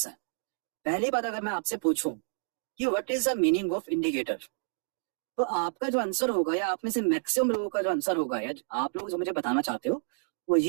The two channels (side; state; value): left; silent; digital silence